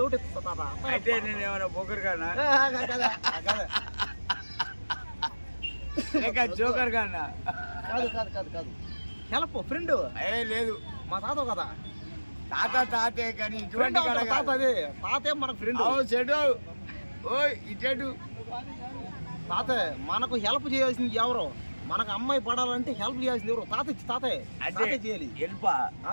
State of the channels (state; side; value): inverted; both; correlation -1.00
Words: ఎత్తుతా. అయితే నేను ఏమైనా బోకర్ కానా లేక జోకర్ కానా? కాదు కాదు కాదు కాదు. Help friend. లేదు, మా తాత కదా. తాతే కానీ ఇటువంటి తాత అదే తాతే మనకు ఫ్రెండ్. చెడు ఓ ఇటు తాత మనకు హెల్ప్ చేయాల్సింది ఎవరు? మనకు అమ్మాయి పడాలంటే హెల్ప్ చేయాల్సింది ఎవరు? తాతే చేయాలి. హెల్ప్